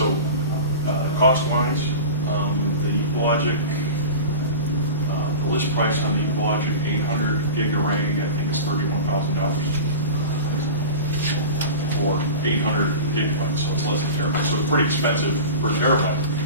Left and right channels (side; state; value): both; inverted; correlation -0.32